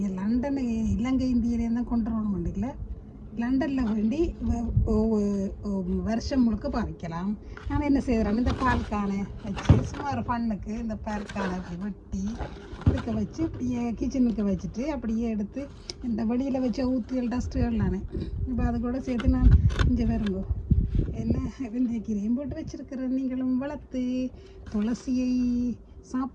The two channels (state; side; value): identical; both; correlation 1.00